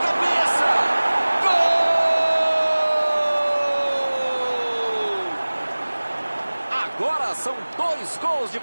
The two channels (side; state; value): both; inverted; correlation -1.00